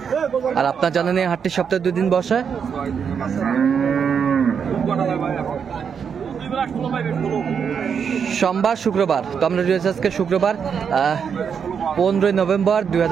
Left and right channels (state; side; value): quieter; left; 6.9 dB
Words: আর আপনার জানেন এই হাটটি সপ্তাহে 2 দিন বসে, সোমবার শুক্রবার। তো আমরা রয়েছে আজকে শুক্রবার 15 নভেম্বর